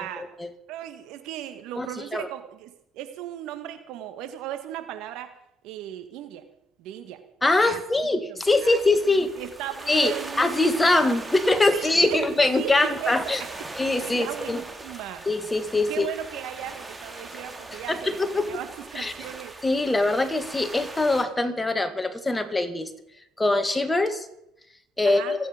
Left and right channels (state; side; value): normal; both; correlation 0.86